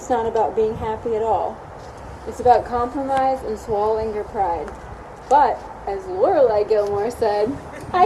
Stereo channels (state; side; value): identical; both; correlation 1.00